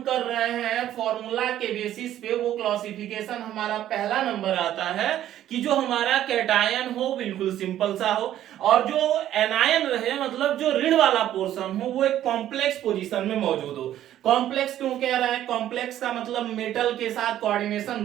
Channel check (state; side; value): quieter; left; 12.1 dB